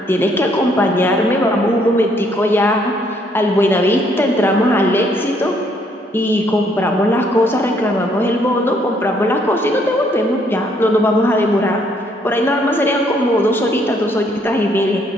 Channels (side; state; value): both; normal; correlation 0.68